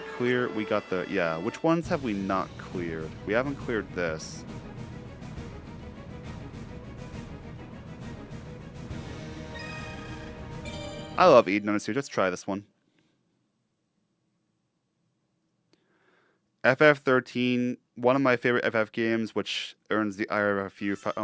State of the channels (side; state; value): both; identical; correlation 1.00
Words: clear? We got the... Yeah, which ones have we not cleared? We haven't cleared this. I love Eden on a series. Let's try this one. FF13, one of my favorite FF games, which earns the ire of a few